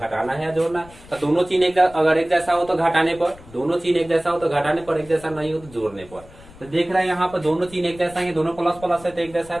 है या जोड़ना है, तो दोनों चिन्ह अगर एक जैसा हो तो घटाने पर, दोनों चिन्ह एक जैसा हो तो घटाने पर, एक जैसा नहीं हो तो जोड़ने पर। तो देख रहे हैं यहाँ पर दोनों चिन्ह एक जैसा है, दोनों प्लस प्लस है तो एक जैसा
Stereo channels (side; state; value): left; noise; rumble, 21 dB below the sound